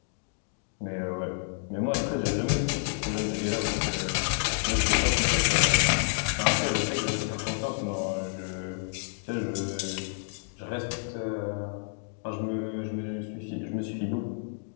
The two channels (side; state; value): right; silent; digital silence